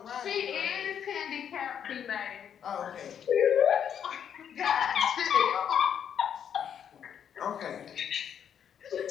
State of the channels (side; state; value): right; quieter; 8.6 dB